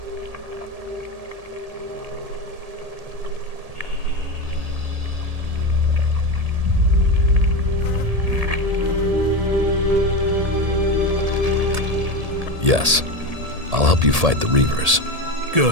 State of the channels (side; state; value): left; late; 1.8 ms